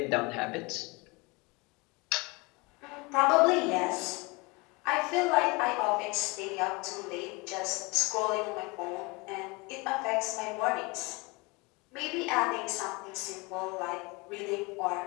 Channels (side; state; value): right; quieter; 26.6 dB